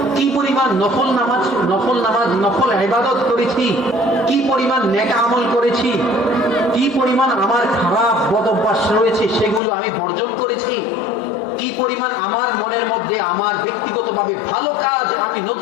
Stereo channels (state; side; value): drops out; right; at 9.6 s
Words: কি পরিমাণ নফল ইবাদত করেছি, কি পরিমাণ নেক আমল করেছি, কি পরিমাণ আমার খারাপ বদ অভ্যাস রয়েছে সেগুলো আমি বর্জন করেছি, কি পরিমাণ আমার মনের মধ্যে আমার ব্যক্তিগতভাবে ভালো কাজ আমি